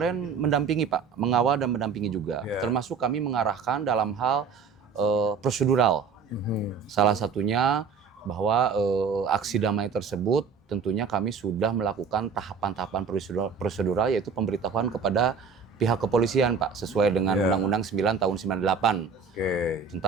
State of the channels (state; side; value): quieter; left; 5.7 dB